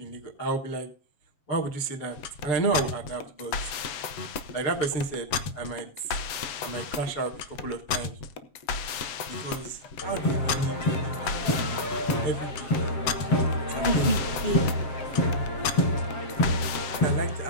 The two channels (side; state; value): right; late; 7.3 ms